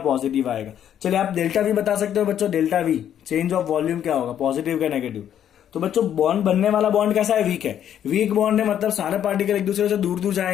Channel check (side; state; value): right; quieter; 10.0 dB